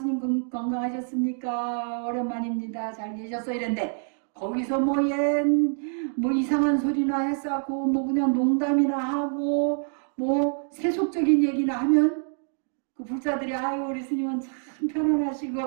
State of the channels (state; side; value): silent; left; 58 dB below the other